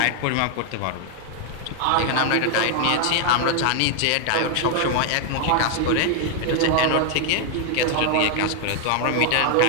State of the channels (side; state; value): both; different; correlation 0.00